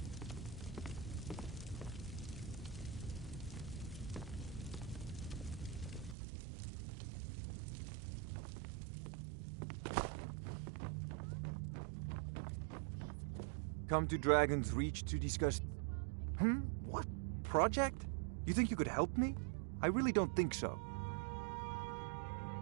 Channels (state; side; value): drops out; left; at 6.2 s